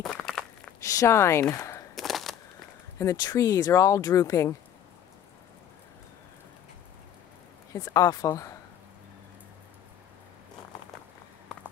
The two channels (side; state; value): right; quieter; 9.9 dB